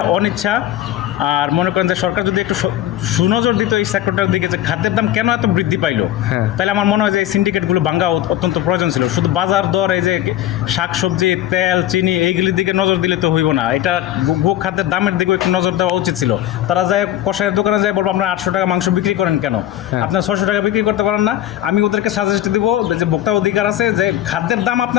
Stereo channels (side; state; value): right; quieter; 12.9 dB